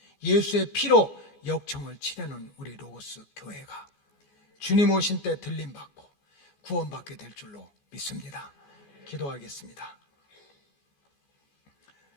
예수의 피로 역청을 칠해놓은 우리 로고스 교회가 주님 오신 때 들림받고 구원받게 될 줄로 믿습니다. 기도하겠습니다.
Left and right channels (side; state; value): right; late; 14 ms